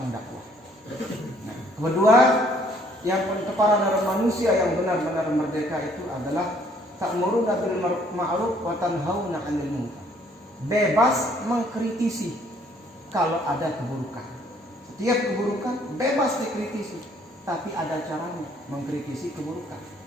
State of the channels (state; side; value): normal; both; correlation 0.62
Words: dakwah. Nah, kedua, yang para manusia yang benar-benar merdeka itu adalah ta'muruna bil ma'ruf wa tanhauna 'anil munkar. Bebas mengkritisi kalau ada keburukan. Setiap keburukan bebas dikritisi, tapi ada caranya mengkritisi keburukan.